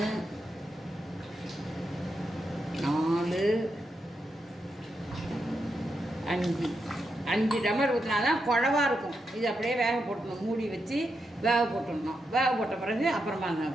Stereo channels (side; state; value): both; normal; correlation 0.84